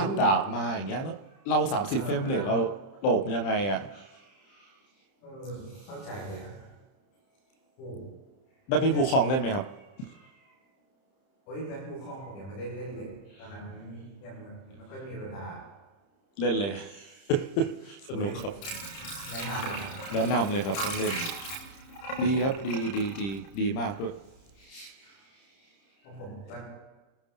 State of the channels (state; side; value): late; right; 30 ms